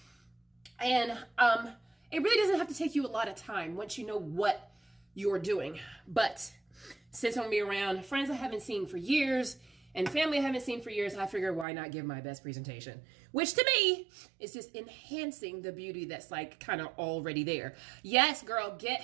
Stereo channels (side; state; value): left; drops out; at 11.7 s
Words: And it really doesn't have to take you a lot of time once you know what you're doing. But since I'm going to be around friends I haven't seen for years and family I haven't seen for years, I figure why not give my best presentation, which to me is just enhancing the beauty that's like kind of already there. Yes, girl,